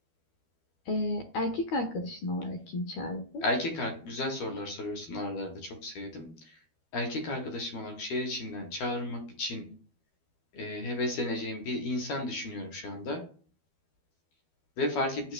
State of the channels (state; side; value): late; right; 12 ms